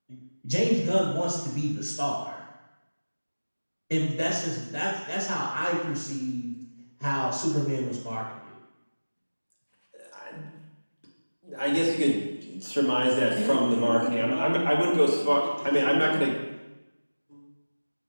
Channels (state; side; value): inverted; both; correlation -1.00